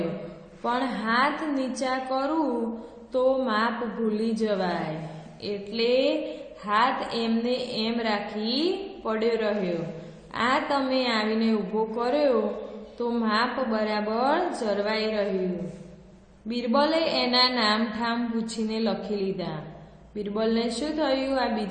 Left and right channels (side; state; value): both; identical; correlation 1.00